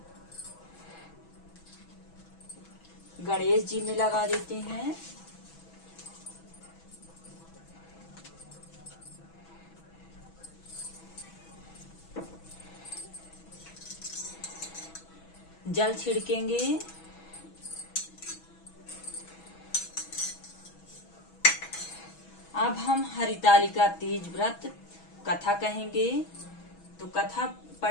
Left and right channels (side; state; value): right; late; 6.1 ms